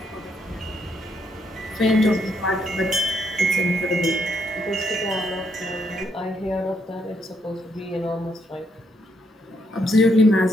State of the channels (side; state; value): both; normal; correlation 0.75